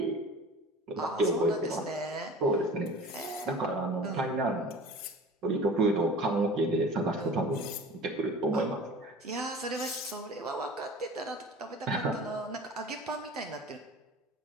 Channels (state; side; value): normal; both; correlation 0.41